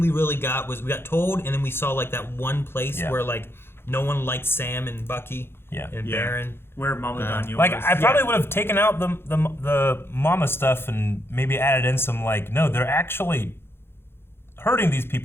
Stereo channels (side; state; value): right; late; 0.11 ms